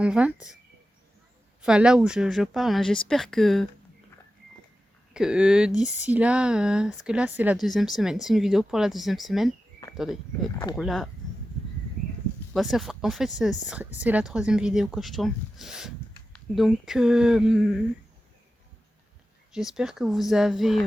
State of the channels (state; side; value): normal; both; correlation 0.92